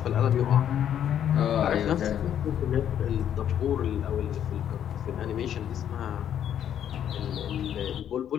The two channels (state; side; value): quieter; right; 9.8 dB